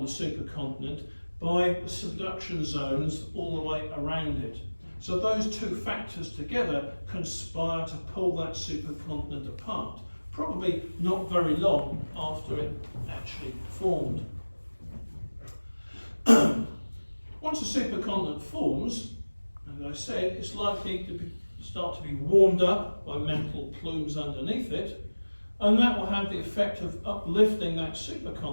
the supercontinent by the subduction zones all the way around it. So those two factors together conspire to pull that supercontinent apart, probably not very long after it actually formed. Once a supercontinent forms, as I said, it's likely to start to be warmed up by mantle plumes underneath it, and that will have the effect of uplifting that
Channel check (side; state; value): both; inverted; correlation -1.00